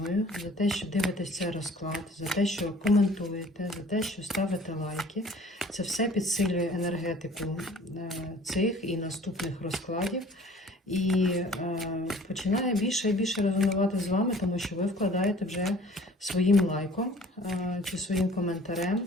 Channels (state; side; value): normal; both; correlation 0.50